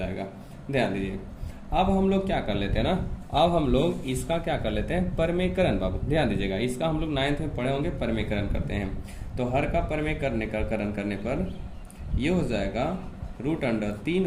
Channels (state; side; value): identical; both; correlation 1.00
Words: ध्यान दीजिए, अब हम लोग क्या कर लेते हैं ना, अब हम लोग इसका क्या कर लेते हैं परमेकरण। बाबू ध्यान दीजिएगा, इसका हम लोग 9th में पढ़े होंगे, परमेकरण करते हैं। तो हर का परमेकरण करने पर ये हो जाएगा √3